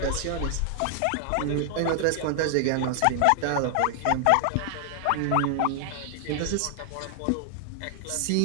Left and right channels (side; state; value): both; different; correlation 0.00